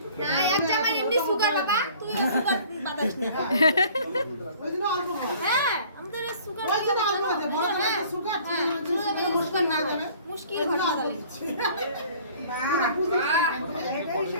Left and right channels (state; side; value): inverted; both; correlation -0.51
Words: না এক জামাই এমনি সুগার বাবা তুই সুগার বাতাস না ওই জন্য অল্প খাও। হ্যাঁ আমাদের সুগার ওই জন্য অল্প আছে, বড় করে একটা সুগার, ছোট করে একটা মুশকিল না যাবে। মুশকিল ওই জন্য ভালো অল্প লাগে দিচ্ছি। না,